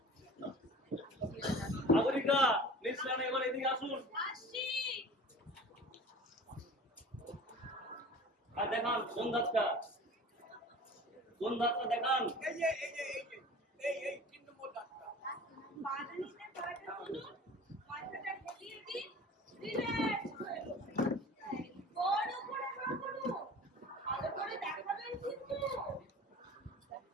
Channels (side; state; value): both; normal; correlation 0.41